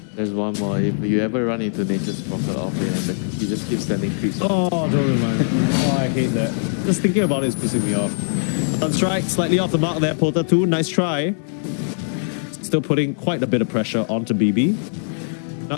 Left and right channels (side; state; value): right; silent; digital silence